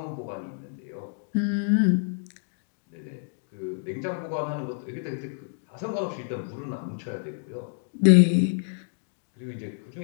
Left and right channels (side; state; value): right; silent; digital silence